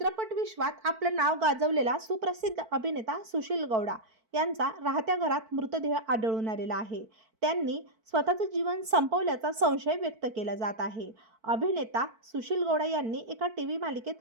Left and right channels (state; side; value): late; left; 4.5 ms